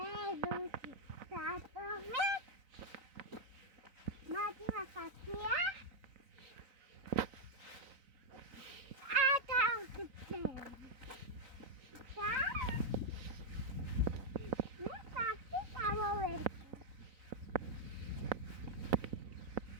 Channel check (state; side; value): late; left; 4.0 ms